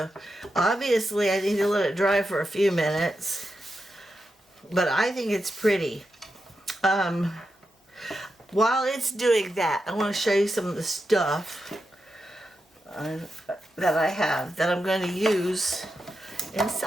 obviously I need to let it dry for a few minutes, but I think it's pretty. While it's doing that, I want to show you some of the stuff that I have that I'm going to use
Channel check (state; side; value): normal; both; correlation 0.87